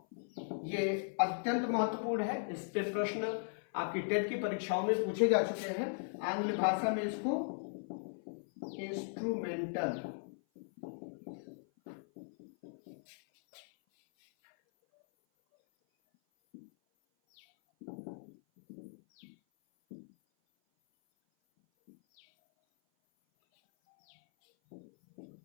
ये अत्यंत महत्वपूर्ण है। इस पे प्रश्न आपकी टेट की परीक्षाओं में पूछे जा चुके हैं। आंग्ल भाषा में इसको इंस्ट्रूमेंटल,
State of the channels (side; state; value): right; silent; 53 dB below the other